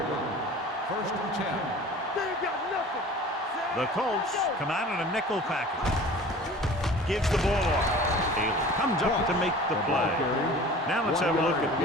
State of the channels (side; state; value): both; normal; correlation 0.42